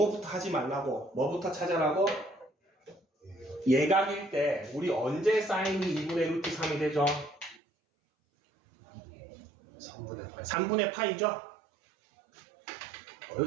하지 말라고. 뭐부터 찾아라고? 예각일 때 우리 언제 사인이 2분의 루트 3이 되죠? 3분의 8. 3분의 파이죠?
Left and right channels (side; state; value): left; drops out; at 7.6 s